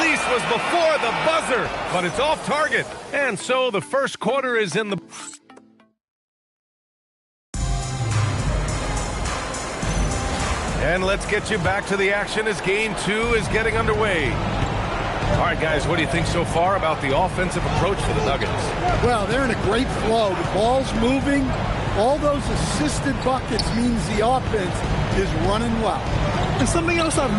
was before the buzzer, but it's off target. And so the first quarter is in the... And let's get you back to the action as game 2 is getting underway. All right, guys, what do you think so far about the offensive approach for the Nuggets? Well, they're in a great flow. The ball's moving. All those assisted buckets means the offense is running well. And something else I've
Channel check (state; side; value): identical; both; correlation 1.00